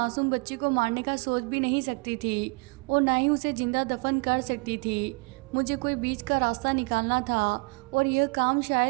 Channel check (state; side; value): quieter; left; 30.7 dB